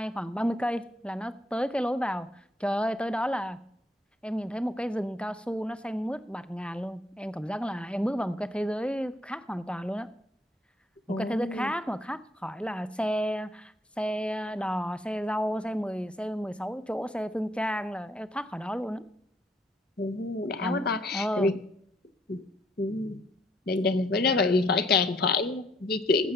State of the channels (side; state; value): both; normal; correlation 0.68